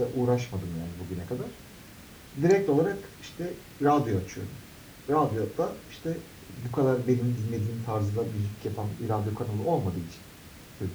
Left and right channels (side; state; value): both; identical; correlation 1.00